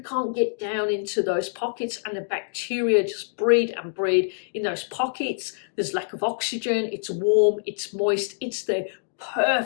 get down into those pockets, and the bacteria just breed and breed in those pockets. There's lack of oxygen, it's warm, it's moist, it's the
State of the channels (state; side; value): silent; right; digital silence